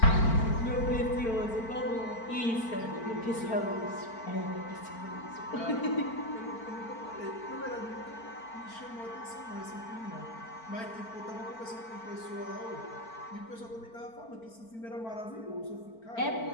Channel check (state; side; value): late; right; 4.5 ms